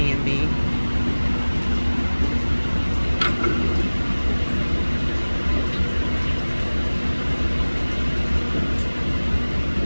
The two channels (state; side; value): inverted; both; correlation -1.00